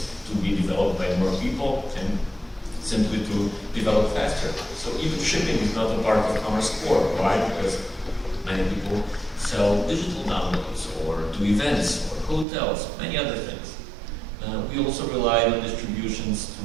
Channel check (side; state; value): left; drops out; at 12.5 s